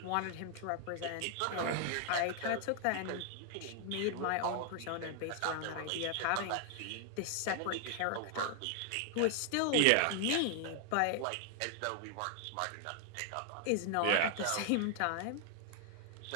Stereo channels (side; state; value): both; different; correlation 0.00